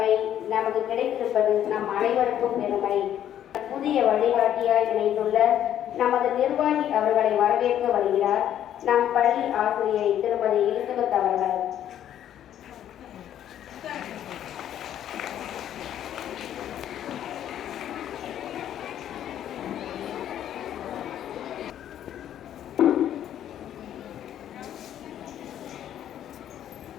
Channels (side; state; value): right; quieter; 10.8 dB